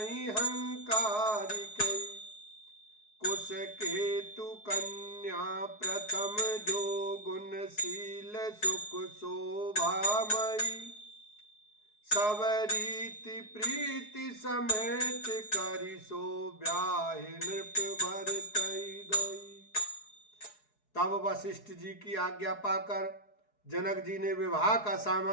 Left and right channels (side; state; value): right; late; 4.7 ms